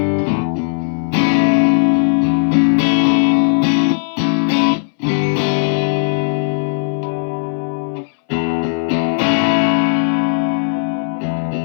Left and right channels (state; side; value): silent; right; 63 dB below the other